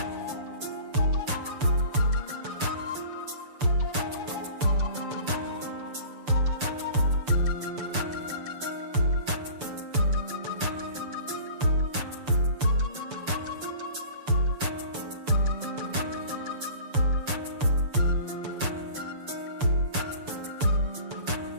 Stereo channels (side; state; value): left; late; 6.8 ms